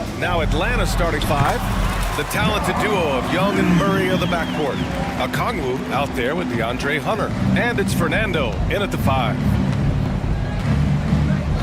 Now Atlanta starting five. The talented duo of Young and Murray are the backcourt. Okongwu out there with DeAndre Hunter. And it's Fernando in at the 5.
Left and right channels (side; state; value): both; identical; correlation 1.00